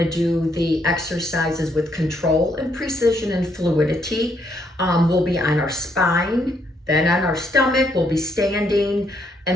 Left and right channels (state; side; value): normal; both; correlation 0.73